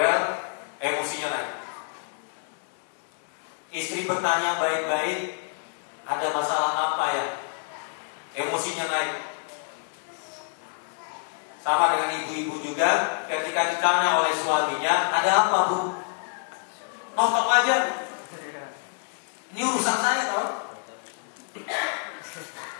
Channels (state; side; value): silent; right; 60 dB below the other